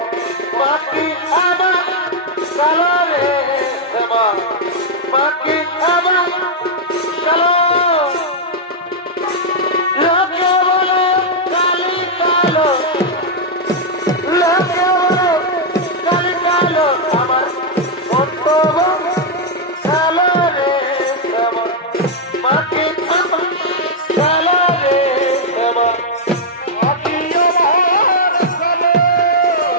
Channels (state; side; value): normal; both; correlation -0.03